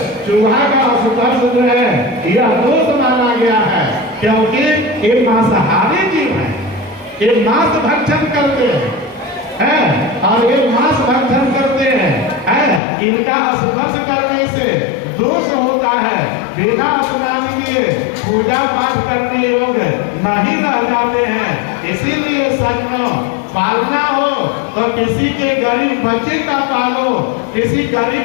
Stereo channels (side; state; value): right; drops out; at 12.8 s